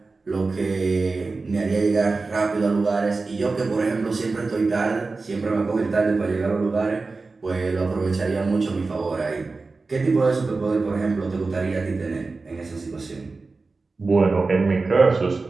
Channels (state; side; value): quieter; left; 3.9 dB